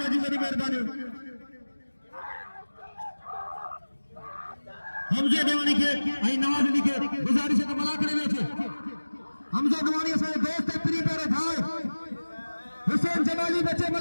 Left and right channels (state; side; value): inverted; both; correlation -1.00